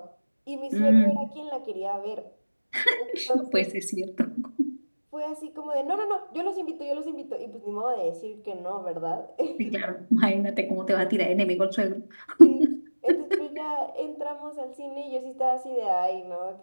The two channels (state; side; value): inverted; both; correlation -1.00